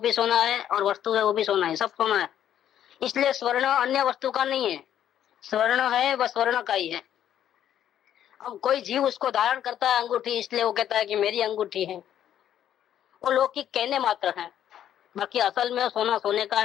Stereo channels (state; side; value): quieter; right; 10.5 dB